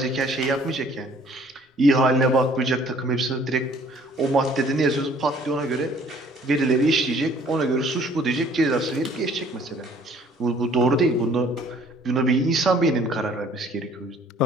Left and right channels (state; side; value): normal; both; correlation 0.56